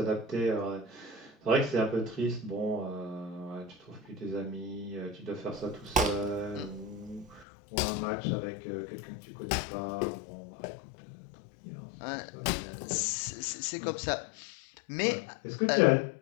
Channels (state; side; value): drops out; right; at 7.5 s